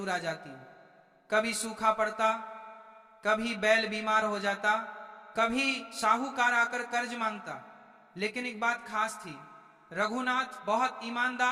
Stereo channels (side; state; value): both; identical; correlation 1.00